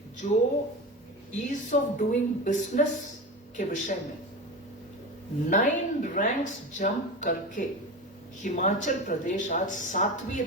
जो ईज ऑफ डूइंग बिजनेस के विषय में 9 रैंक्स जंप करके हिमाचल प्रदेश आज 7वीं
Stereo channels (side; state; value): both; normal; correlation 0.26